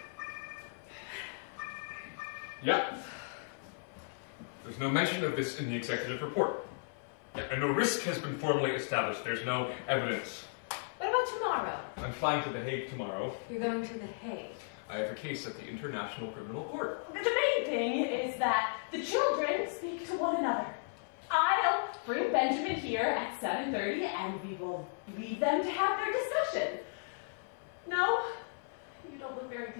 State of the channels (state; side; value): silent; right; 54 dB below the other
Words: Yep. There's no mention of this in the executive report. Yep, and no risk has been formally established. There's no evidence. What about tomorrow? I'm flying to The Hague tomorrow. You're going to The Hague. I have a case at the International Criminal Court. The main thing is that the children speak to one another. I'll bring Benjamin here at 7:30 and we will leave them to have their discussion. No? You don't look very